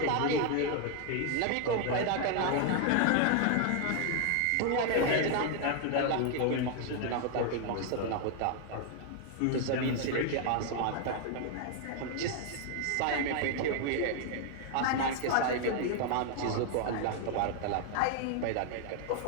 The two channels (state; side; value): different; both; correlation 0.00